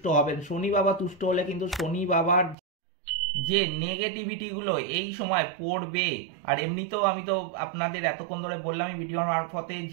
হবেন। শনি বাবা তুষ্ট হলে কিন্তু শনি বাবার যে নেগেটিভিটিগুলো এই সময় পড়বে। আর এমনিতেও আমি তো আপনাদের এতক্ষণ ধরে বললাম এই ভিডিওর মারফতে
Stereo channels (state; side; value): drops out; left; at 2.6 s